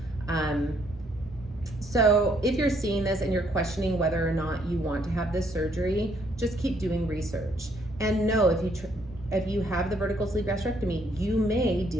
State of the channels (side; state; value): right; noise; rumble, 19 dB below the sound